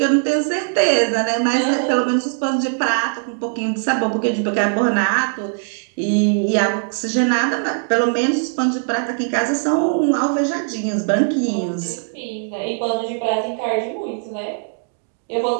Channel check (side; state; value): left; silent; 63 dB below the other